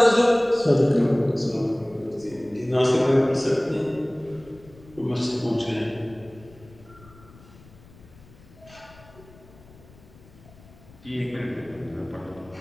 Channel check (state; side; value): noise; left; rumble, 23 dB below the sound